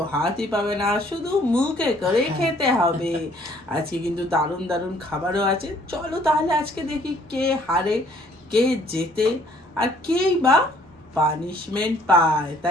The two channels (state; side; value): normal; both; correlation 0.60